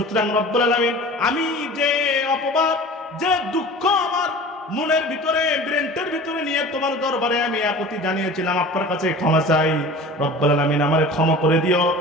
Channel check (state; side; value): normal; both; correlation 0.39